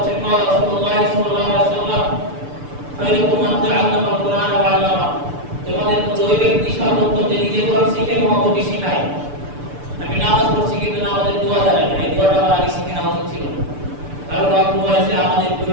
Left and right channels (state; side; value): late; left; 6.9 ms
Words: রাসূলুল্লাহ সাল্লাল্লাহু আলাইহি ওয়াসাল্লাম খায়রুকুম মান তাআল্লামা আল-কুরআন ওয়া 'আল্লামা, তোমাদের মধ্যে ওই ব্যক্তি সর্বোত্তম যে নিজে কোরআন শিখে এবং অপরকে শেখায়। আমি নামাজ পড়ছি কিন্তু নামাজের দোয়া জানি না, এই দোয়াটা আমার আগে শিখে নেওয়া উচিত ছিল। কারণ অল্প বয়সে আমাদের